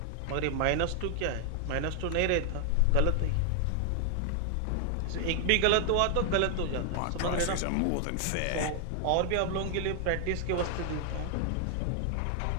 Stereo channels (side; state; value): both; different; correlation 0.00